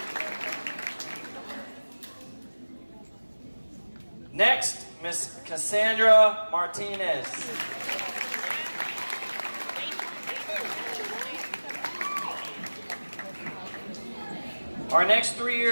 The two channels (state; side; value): inverted; both; correlation -1.00